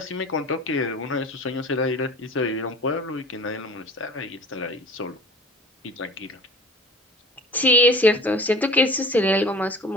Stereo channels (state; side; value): normal; both; correlation 0.42